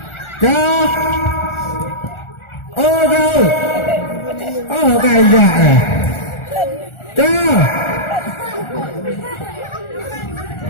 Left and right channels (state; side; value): late; right; 1.4 ms